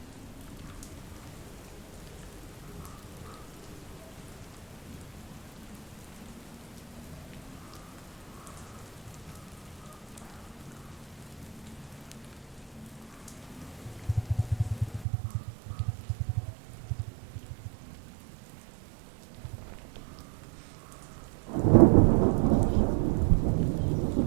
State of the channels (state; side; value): drops out; left; at 15.1 s